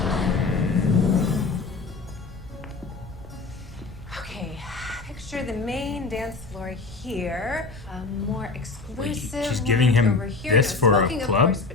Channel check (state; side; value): quieter; right; 4.0 dB